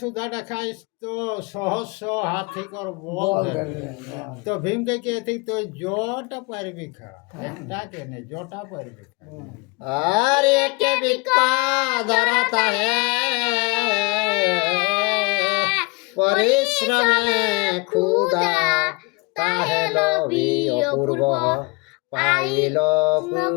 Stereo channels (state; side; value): quieter; right; 27.5 dB